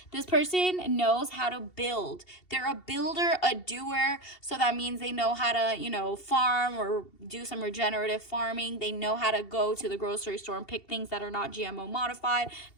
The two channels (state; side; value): late; right; 2.7 ms